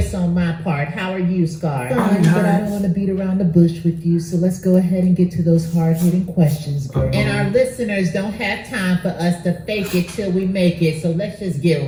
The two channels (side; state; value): both; identical; correlation 1.00